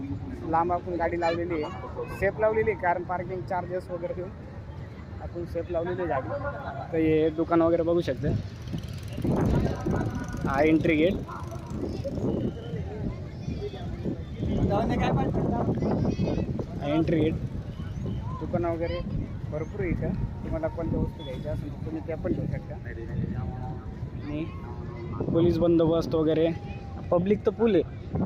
लांब आपण गाडी लावलेली आहे. सेफ लावलेली आहे, कारण पार्किंग चार्जेस वगैरे देऊन आपण सेफ लावलेली गाडी. तर हे दुकान वगैरे बघू शकते. हा एंट्री गेट. एंट्री गेट दुकानं वगैरे भरपूर आहे इथं. तुम्हाला कोणत्या वस्तू घ्यायच्या असेल तर तुम्ही त्या पण घेऊ शकता. आणि पोलीस बंदोबस्त वगैरे, पब्लिक तर फुल आहे,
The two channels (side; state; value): both; identical; correlation 1.00